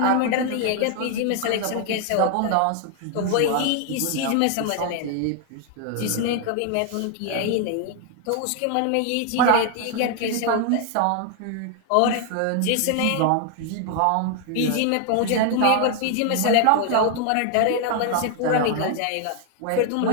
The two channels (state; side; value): different; both; correlation 0.00